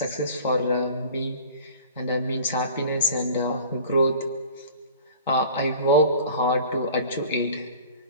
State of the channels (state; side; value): inverted; both; correlation -0.43